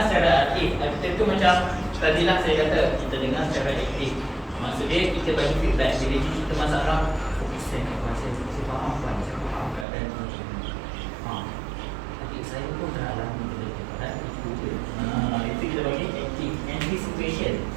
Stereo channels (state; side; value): drops out; left; at 9.9 s